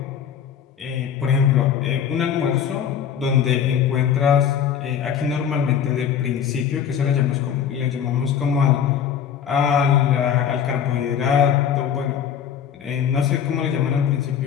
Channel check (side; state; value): right; quieter; 8.4 dB